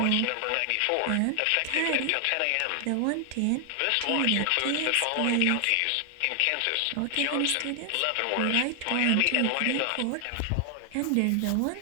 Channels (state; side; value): different; both; correlation 0.00